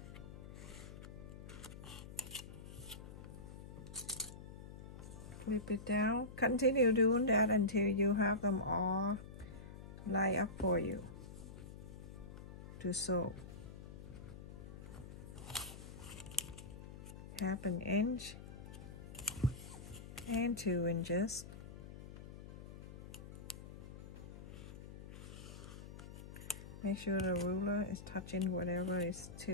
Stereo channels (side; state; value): left; noise; hum, 12 dB below the sound